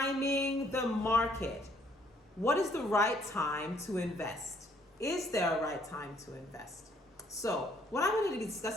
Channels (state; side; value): normal; both; correlation 0.65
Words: the market. What is the right time to invest? Is there a right time to invest? So what I'm going to be